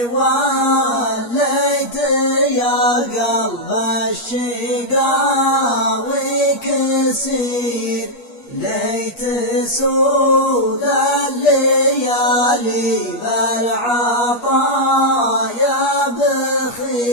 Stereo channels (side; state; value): right; late; 8.4 ms